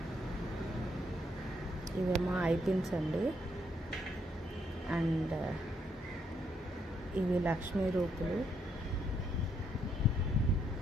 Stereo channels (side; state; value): both; normal; correlation 0.74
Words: ఇవేమో ఐ పిన్స్ అండి. అండ్ ఇవి లక్ష్మీ రూపులు.